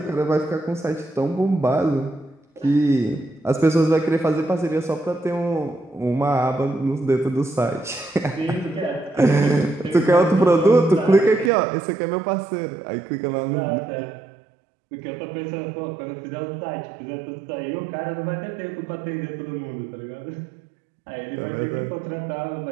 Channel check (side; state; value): left; drops out; at 11.5 s